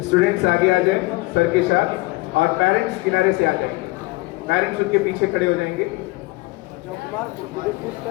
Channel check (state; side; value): quieter; right; 22.0 dB